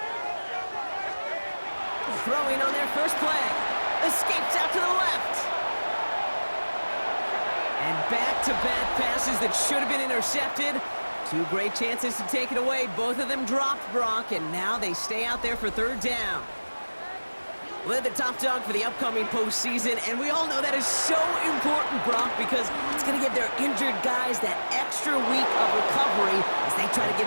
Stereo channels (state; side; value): inverted; both; correlation -1.00